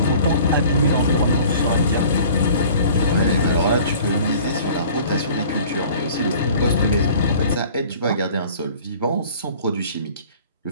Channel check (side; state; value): both; inverted; correlation -0.48